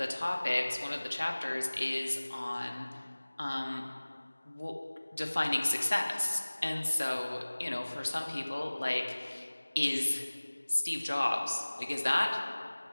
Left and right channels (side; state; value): both; inverted; correlation -1.00